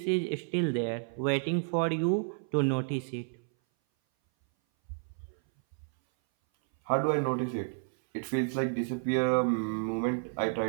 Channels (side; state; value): left; silent; 57 dB below the other